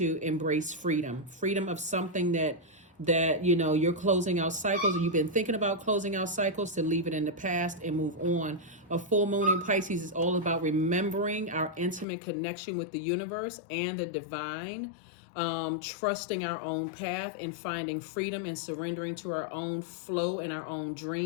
embrace freedom. Freedom of something that you're closing out cycles, or you've been thinking about closing out cycles, to leave it in the past and move on. A full moon in Pisces is all about remembering our intimate connection with the universe and the divine. Trusting our own path and finding freedom and surrendering to our own flow and our own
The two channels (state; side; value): drops out; right; at 12.1 s